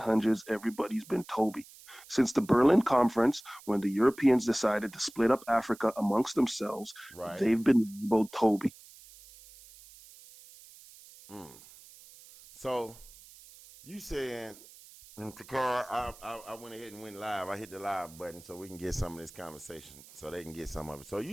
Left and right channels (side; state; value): right; noise; hiss, 21 dB below the sound